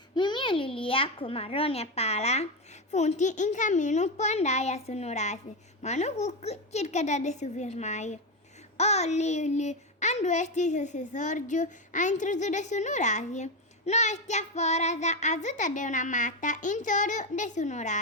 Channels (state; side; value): normal; both; correlation 0.12